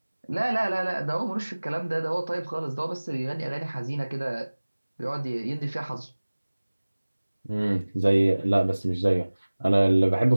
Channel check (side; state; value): both; inverted; correlation -1.00